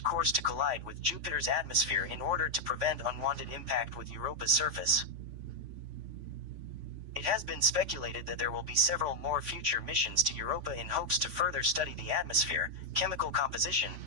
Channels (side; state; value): left; late; 3.5 ms